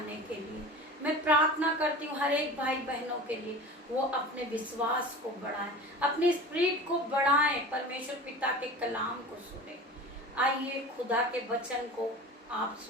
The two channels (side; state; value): both; normal; correlation 0.35